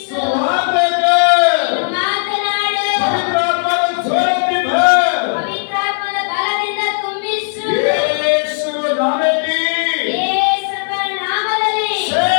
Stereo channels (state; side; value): silent; right; digital silence